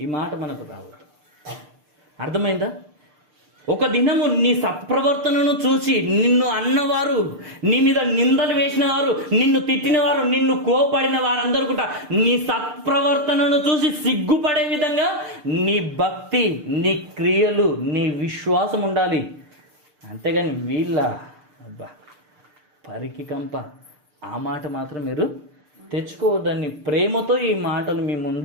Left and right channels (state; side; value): late; left; 6.7 ms